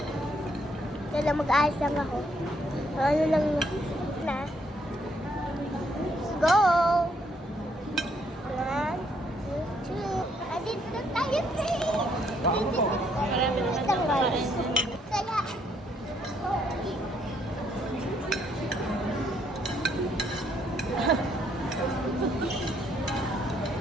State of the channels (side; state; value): both; normal; correlation 0.70